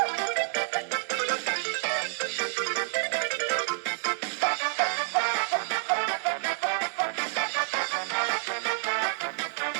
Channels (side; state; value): left; silent; digital silence